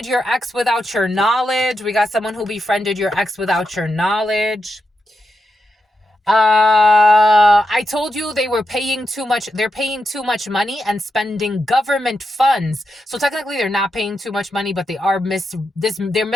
your ex without your knowledge. We got someone who befriended your ex without your knowledge. I told you they were paying too much. They're paying too much money and spending government funds. So technically they're not paying too much money, but they are they're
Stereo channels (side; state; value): both; normal; correlation 0.86